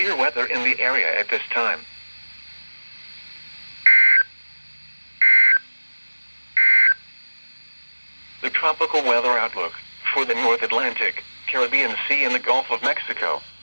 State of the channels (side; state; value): both; inverted; correlation -1.00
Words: severe weather in the area at this time. The tropical weather outlook for the North Atlantic, Caribbean Sea and the Gulf of Mexico,